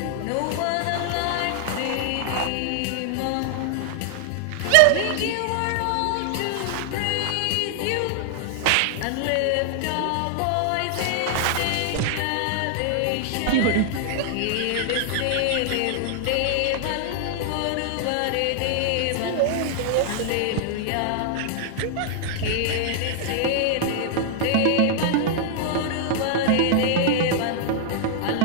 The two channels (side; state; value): both; different; correlation 0.00